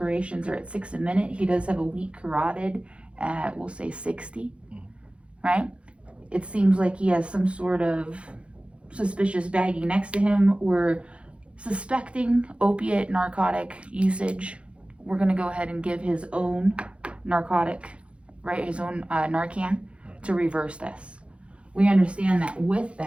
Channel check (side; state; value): left; late; 0.060 ms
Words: are at 6 a minute. He does have a weak carotid at, we'll say 60, right? It seems like he has some sort of suspicious baggie next to him. We're suspecting opiate narcotic usage. We're gonna go ahead and give his own narcotic, right, his own Narcan to reverse this. We understand that with